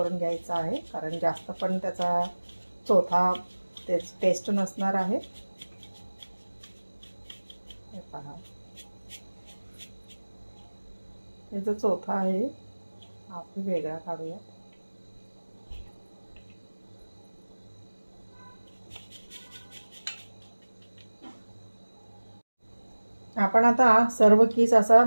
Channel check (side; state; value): both; inverted; correlation -1.00